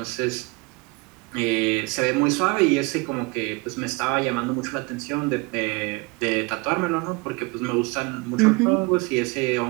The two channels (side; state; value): left; quieter; 27.2 dB